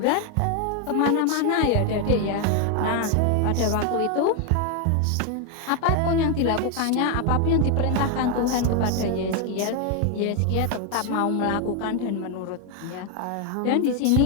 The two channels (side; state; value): both; different; correlation 0.01